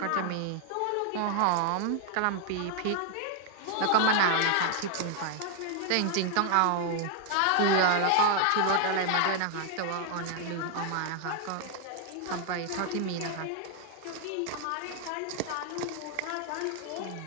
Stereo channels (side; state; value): both; different; correlation 0.00